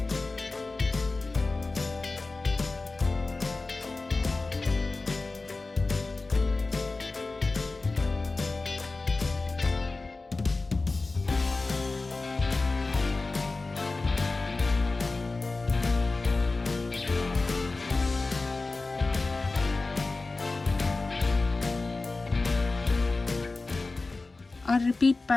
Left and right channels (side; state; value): right; quieter; 3.5 dB